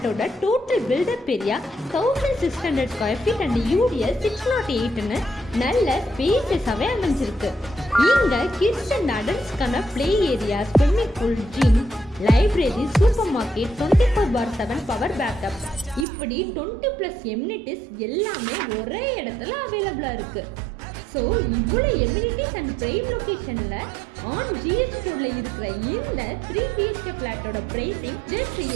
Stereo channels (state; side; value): drops out; left; at 16.1 s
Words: total built up area 1600 square feet and UDS 608ன்னு நல்ல ஸ்பேசஸாவே அமைஞ்சிருக்கு. இங்க கிட்ஸ் அண்ட் அடல்ட்ஸ்க்கான play area, swimming pool, gym, library, supermarket, 24/7 power backup, இப்படி 20+ எம்யூனிட்டிஸ் எல்லாமே ஒரே இடத்துல அவைலபிளா இருக்கு. ஸோ இவ்வளோ எம்யூனிட்டிஸ் அண்ட் பிரைம் லொக்கேஷன்ல ஆன் ஜிஎஸ்டி ரோட்ல இருக்கிற இந்த 3 BHK ஃபிளாட்டோட பிரைசிங் ஜஸ்ட்